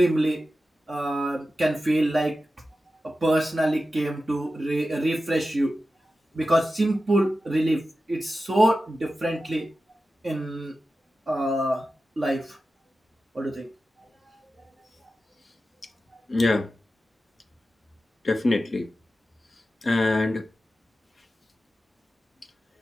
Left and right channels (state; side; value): normal; both; correlation 0.93